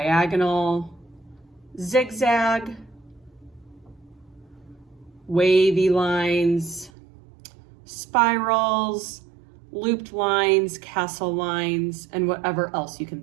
zigzag, wavy lines, spirals, looped lines, castle lines, and whatever else you can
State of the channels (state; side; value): drops out; left; at 6.9 s